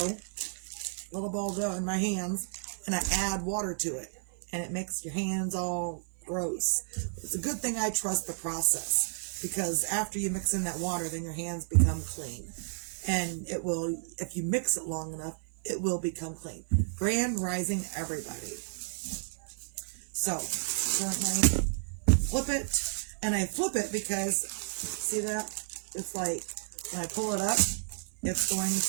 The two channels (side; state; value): left; silent; 57 dB below the other